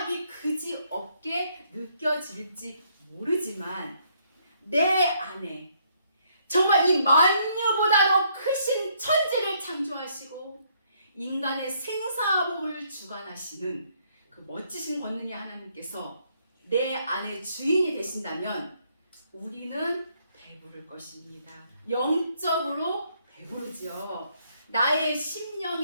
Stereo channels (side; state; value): both; inverted; correlation -0.69